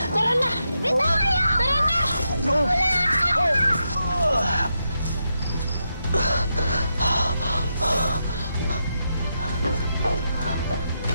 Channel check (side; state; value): both; inverted; correlation -0.84